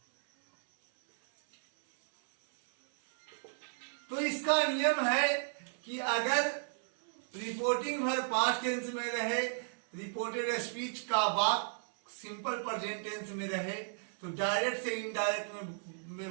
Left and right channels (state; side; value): silent; left; 55 dB below the other